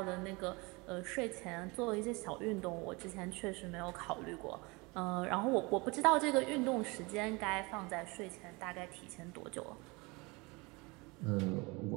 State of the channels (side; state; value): left; quieter; 26.2 dB